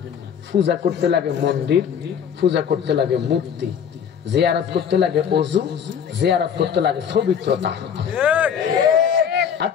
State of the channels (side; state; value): right; quieter; 7.9 dB